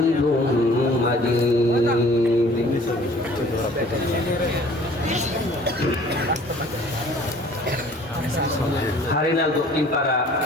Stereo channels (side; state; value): both; normal; correlation 0.52